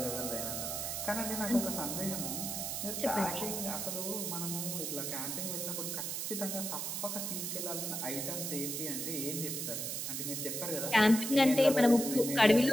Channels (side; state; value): right; noise; hiss, 3 dB below the sound